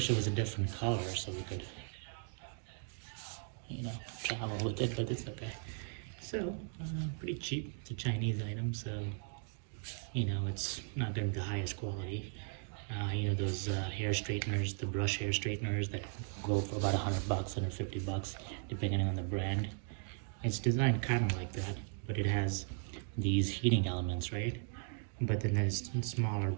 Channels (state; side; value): silent; left; 53 dB below the other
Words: it was a different color so we could, travel with it, but it's okay. So, pretty cheap. It's a Chinese item, so, it's not going to be the highest quality. Those hair straighteners, the brush hair straighteners that go for about $100, $150, depending on the brand. It's designed kind of like that, but it has these heating elements, right? But then there's smaller